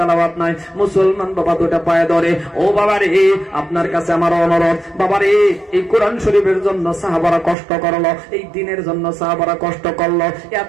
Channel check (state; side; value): drops out; left; at 7.6 s